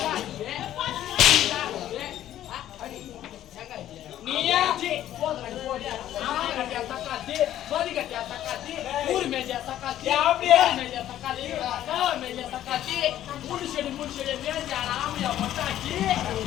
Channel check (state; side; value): quieter; right; 12.3 dB